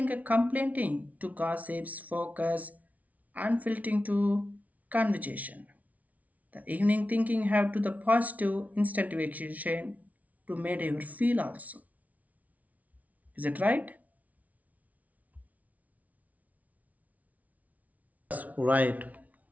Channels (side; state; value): left; late; 0.071 ms